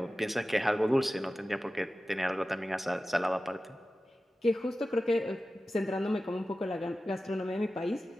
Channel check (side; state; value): both; normal; correlation 0.95